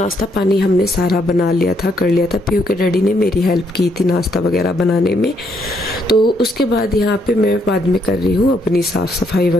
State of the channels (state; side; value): normal; both; correlation 0.73